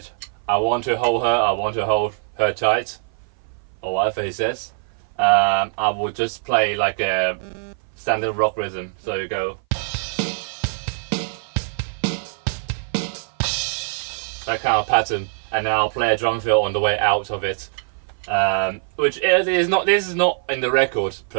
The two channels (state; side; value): silent; left; 58 dB below the other